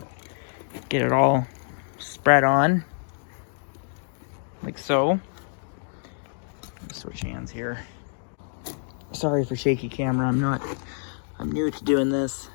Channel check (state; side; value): silent; right; digital silence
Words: Get it all spread on. Like so. Switch hands here. Sorry for shaky camera. I'm new to doing this